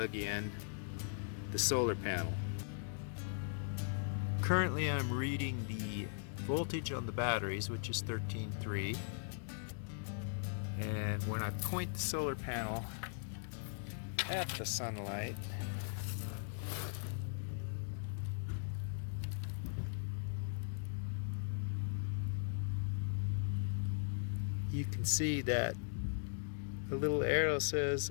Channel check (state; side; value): silent; right; digital silence